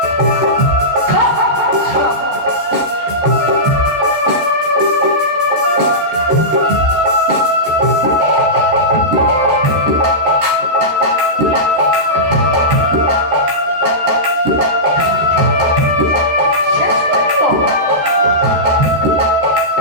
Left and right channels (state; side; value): late; left; 14 ms